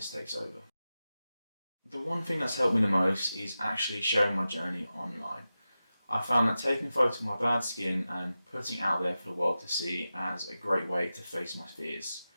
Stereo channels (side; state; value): both; inverted; correlation -0.93